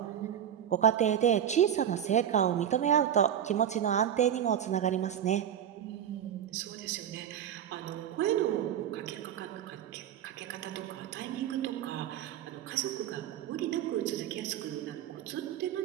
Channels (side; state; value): left; quieter; 9.7 dB